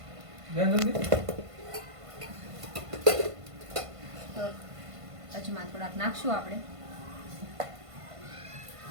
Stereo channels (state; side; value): late; left; 1.5 ms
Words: તો અજમા થોડાક નાખશું આપણે.